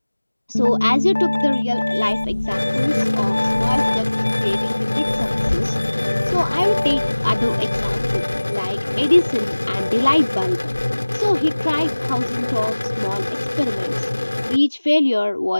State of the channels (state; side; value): inverted; both; correlation -1.00